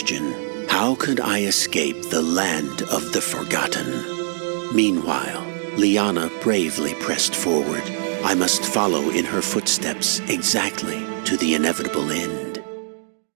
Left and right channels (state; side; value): silent; left; digital silence